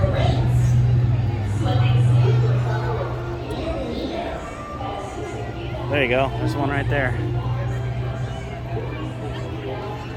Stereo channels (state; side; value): identical; both; correlation 1.00